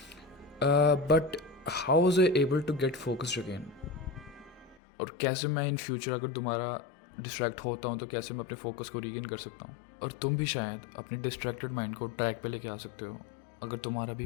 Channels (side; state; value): right; drops out; at 4.8 s